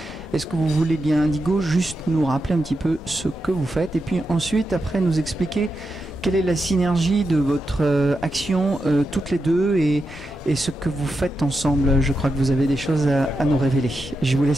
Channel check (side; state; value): both; normal; correlation 0.87